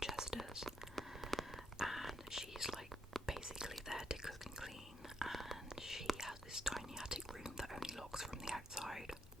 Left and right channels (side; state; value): both; normal; correlation 0.76